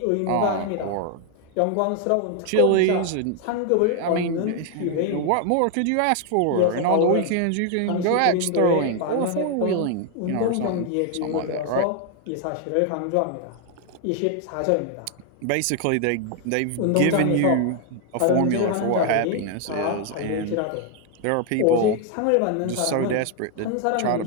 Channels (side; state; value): both; different; correlation 0.00